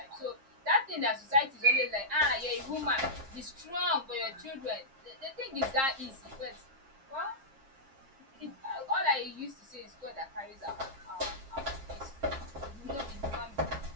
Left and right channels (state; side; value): late; left; 7.5 ms